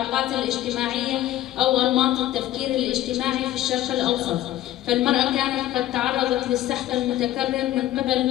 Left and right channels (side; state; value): right; quieter; 13.8 dB